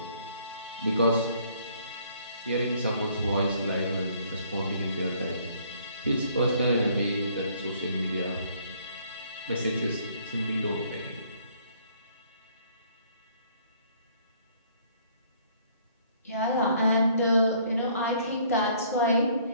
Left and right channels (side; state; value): both; inverted; correlation -0.61